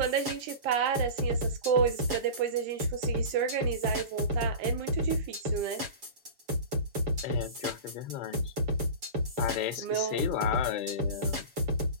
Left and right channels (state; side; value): late; left; 7.1 ms